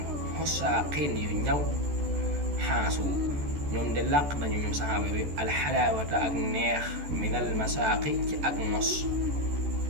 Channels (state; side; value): late; left; 14 ms